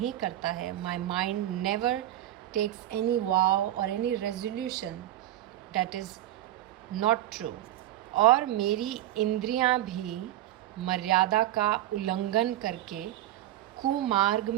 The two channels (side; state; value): left; quieter; 13.8 dB